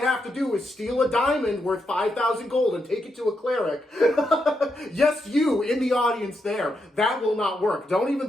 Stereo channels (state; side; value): normal; both; correlation 0.82